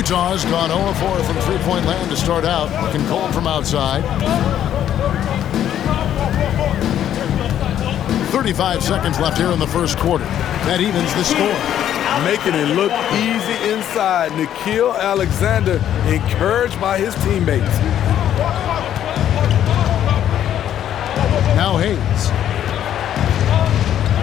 gone 0-4 from three-point land to start out. Looking cold from outside. 35 seconds left here in the first quarter. That evens the score. Making it look easy inside. Nickeil Alexander encouraged by his teammates. Now Hayes.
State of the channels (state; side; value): quieter; right; 10.7 dB